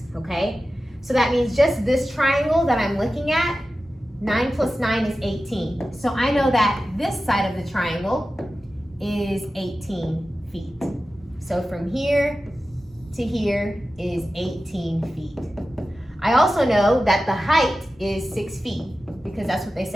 okay? So that means just this triangle that I'm looking at, 9 plus 9 is 18. So I know that this side of the triangle is 18 feet. So from here to here is 18 feet. I also know that the height is 6 feet because that's what they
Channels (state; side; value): normal; both; correlation 0.94